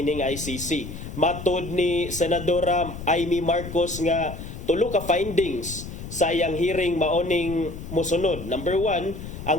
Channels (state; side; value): noise; left; rumble, 10 dB below the sound